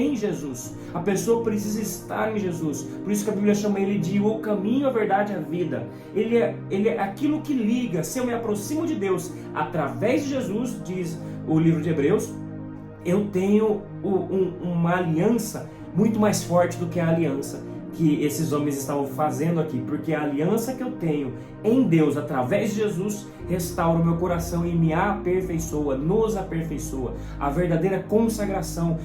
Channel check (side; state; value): both; identical; correlation 1.00